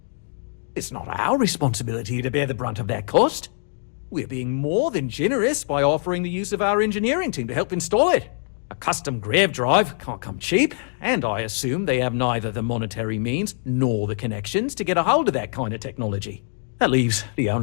It's not our responsibility to bear the brunt of that cost. We're being more than generous by offering the use of our engineering team to help install it. A custom grav drive can't come cheap, and I assume they have neither the monetary means nor the connections to get a hold of that kind of technology. That leaves the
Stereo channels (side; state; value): right; silent; digital silence